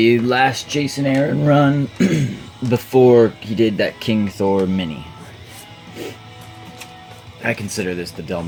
last Jason Aaron run before he did that King Thor mini. I consider this the Del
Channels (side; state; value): both; identical; correlation 1.00